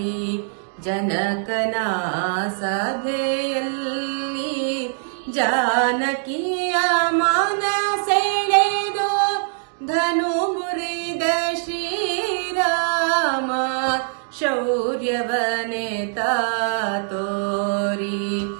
ಜನಕನ ಸಭೆಯಲ್ಲಿ ಜಾನಕಿಯ ಮನ ಸೆಳೆದು ಧನು ಮುರಿದ ಶ್ರೀರಾಮ ಶೌರ್ಯವನೆತ ತೋರಿ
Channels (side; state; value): left; silent; digital silence